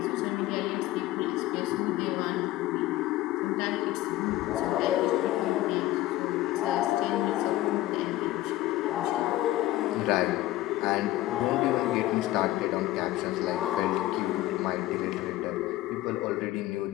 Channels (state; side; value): quieter; right; 16.2 dB